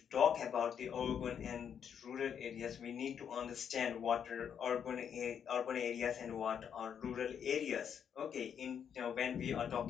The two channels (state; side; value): quieter; right; 8.0 dB